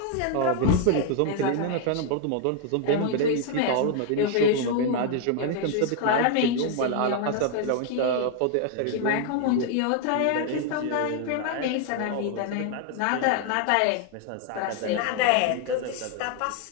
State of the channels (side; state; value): both; different; correlation 0.00